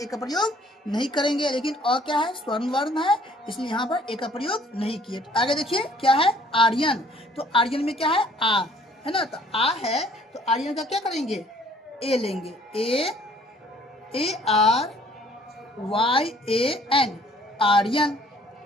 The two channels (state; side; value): normal; both; correlation 0.58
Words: का प्रयोग नहीं करेंगे। लेकिन अ क्या है, स्वर्ण वर्ण है, इसलिए यहाँ पर ए का प्रयोग नहीं किए। तो आगे देखिए क्या है, आर्यन। तो आर्यन में क्या है, आ, है ना, तो आ है, तो आर्यन का क्या करेंगे, ए लेंगे, ARYAN, आर्यन।